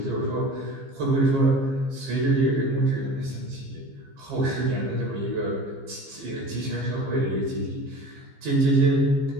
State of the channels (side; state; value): left; late; 15 ms